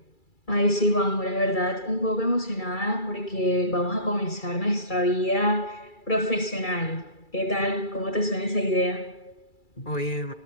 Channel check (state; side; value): late; right; 2.3 ms